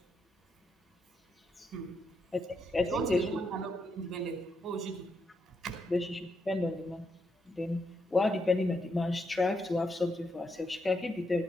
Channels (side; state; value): both; normal; correlation 0.80